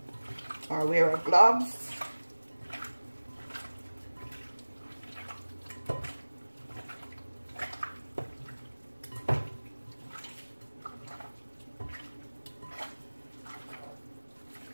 Or wear gloves.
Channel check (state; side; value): inverted; both; correlation -1.00